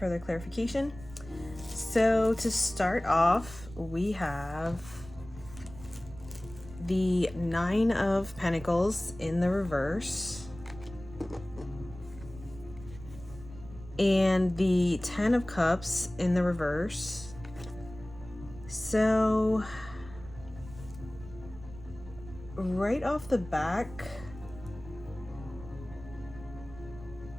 clarification. So to start off, we have the Nine of Pentacles in the reverse. And the Ten of Cups in the reverse. So, right off the back,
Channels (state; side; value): noise; right; rumble, 16 dB below the sound